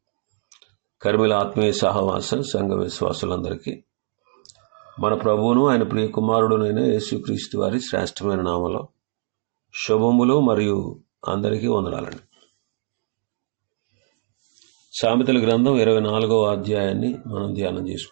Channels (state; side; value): silent; left; digital silence